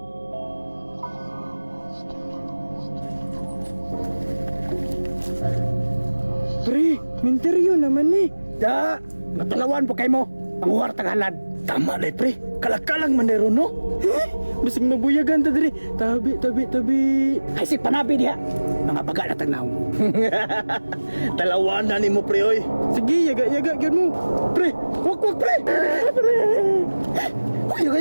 Pre, minteryo naman eh. Da, natalawan po kayo mo. Panguwar tagalan. Tama na pre. Kalakalang manero no? Bising mabuyagan ta diri. Tabi. Ay si panabi diha. Mga baga na tagnaw. Talawan na ni mo pre oy. Sige, yaga gyud mo. Pre, wak pre.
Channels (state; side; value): inverted; both; correlation -1.00